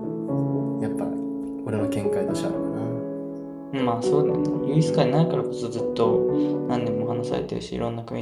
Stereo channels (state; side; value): identical; both; correlation 1.00